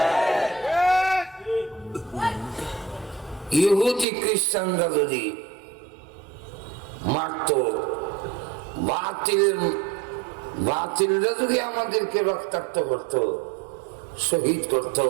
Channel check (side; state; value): left; drops out; at 4.0 s